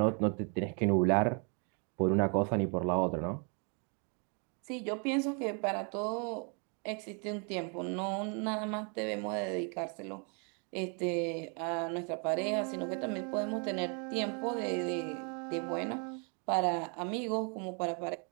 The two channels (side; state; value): left; quieter; 37.4 dB